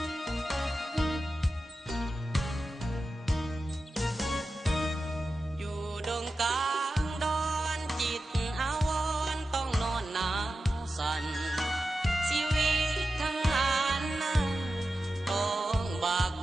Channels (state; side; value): normal; both; correlation 0.92